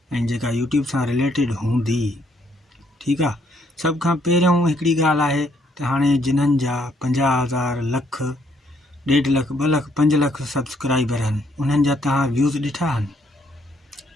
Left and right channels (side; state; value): both; normal; correlation 0.70